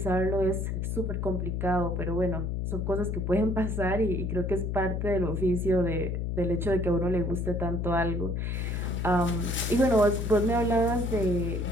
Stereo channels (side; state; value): left; noise; hum, 1 dB below the sound